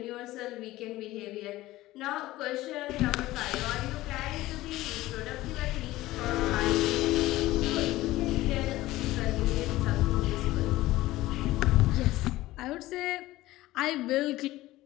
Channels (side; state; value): right; quieter; 17.1 dB